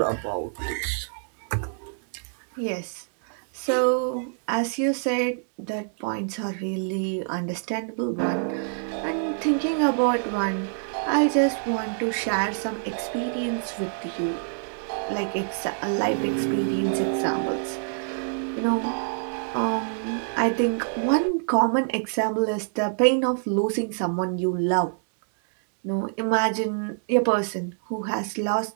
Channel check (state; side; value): silent; left; digital silence